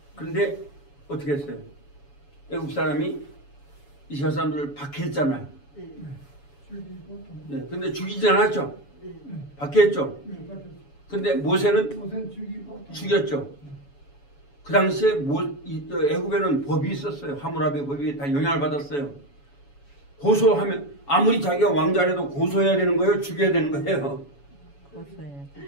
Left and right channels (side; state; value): right; late; 7.1 ms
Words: 그런데 어떻게 했어요? 애국 사람이 이스라엘 사람들을 박해했잖아요. 네, 근데 죽이진 않았죠? 박해했죠? 근데 모세는 죽였죠? 그 당시에 애굽에는 법이 있었어요. 하무라비 법이 다 영향을 받았어요. 고소하면 아무리 자기가 왕자라도 고소해야 되는 거예요? 죽여야 되는 거예요?